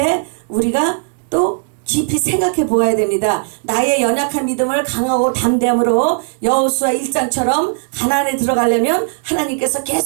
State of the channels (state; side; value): silent; left; digital silence